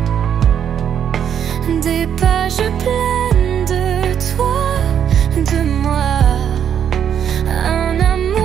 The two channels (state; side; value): quieter; left; 8.7 dB